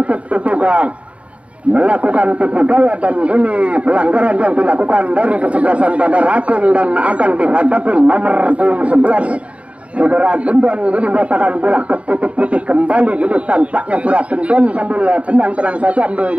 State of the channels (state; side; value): late; left; 0.064 ms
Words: juga melakukan tipu daya dan ini pelanggaran yang dilakukan dari kesebelasan Bandar Agung dan akan dihadapi nomor 11 Saudara Gendon ini mengatakan bola ke titik putih kembali ini tampaknya Saudara Gendon sambil tenang saja